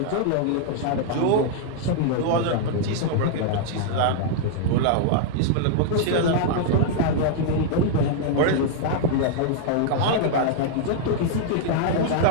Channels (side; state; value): both; different; correlation -0.01